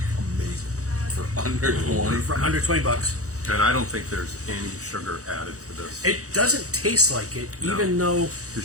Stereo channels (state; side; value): late; left; 0.66 ms